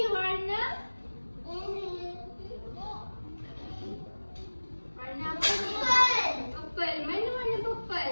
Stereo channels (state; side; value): inverted; both; correlation -1.00